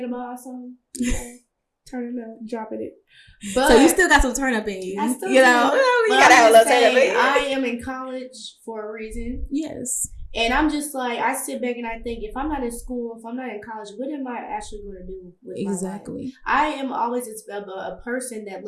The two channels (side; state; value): both; identical; correlation 1.00